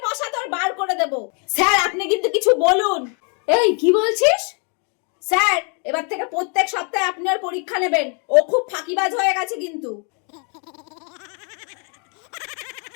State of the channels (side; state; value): right; quieter; 38.5 dB